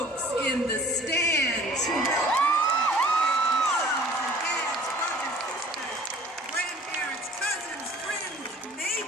in the stands who helped grandparents, cousins, friends,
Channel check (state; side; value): normal; both; correlation 0.50